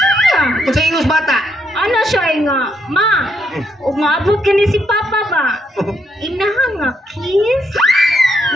Kung sa ingos bata. Ano siya nga? Ma, umabot ka ni si Papa ba? Inaha nga, kiss?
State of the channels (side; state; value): both; normal; correlation 0.76